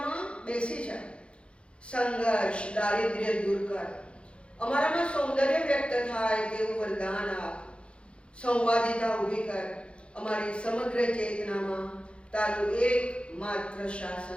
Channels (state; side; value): late; right; 0.058 ms